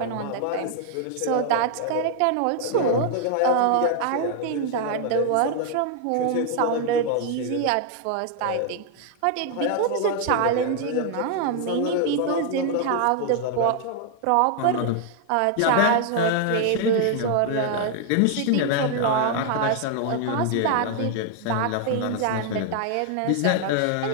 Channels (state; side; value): different; both; correlation 0.00